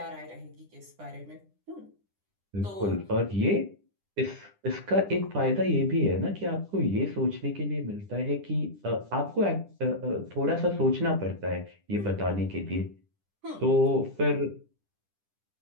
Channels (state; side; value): late; left; 10 ms